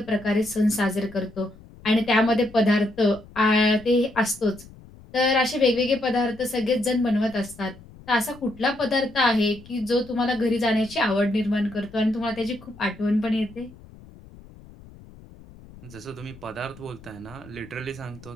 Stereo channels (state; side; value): noise; left; rumble, 21 dB below the sound